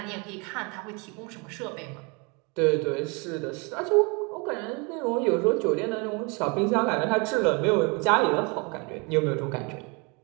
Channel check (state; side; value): quieter; left; 30.8 dB